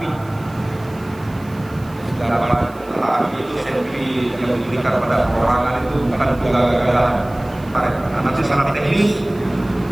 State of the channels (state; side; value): noise; right; hiss, 25 dB below the sound